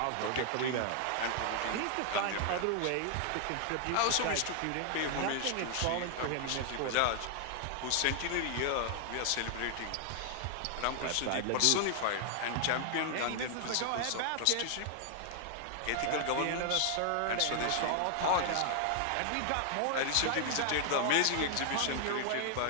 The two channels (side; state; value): both; different; correlation 0.00